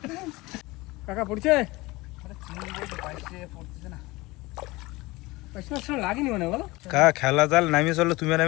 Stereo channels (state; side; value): quieter; right; 21.6 dB